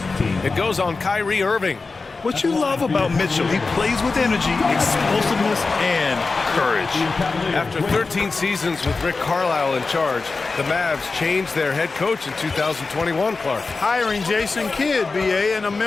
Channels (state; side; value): quieter; right; 4.0 dB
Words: It goes on Kyrie Irving. What you love about Mitchell, he plays with energy, explosiveness, and courage. After 13 seasons with Rick Carlisle in charge, the Mavs changed their head coach in 2021, Clark. Hiring Jason Kidd, B.A., and